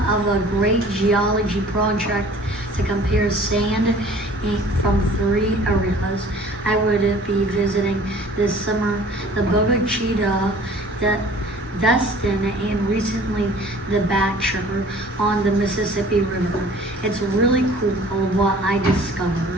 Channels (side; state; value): both; normal; correlation 0.49